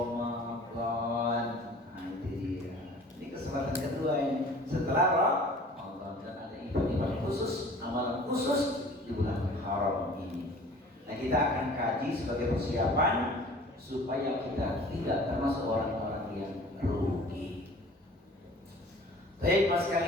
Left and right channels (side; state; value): both; normal; correlation 0.47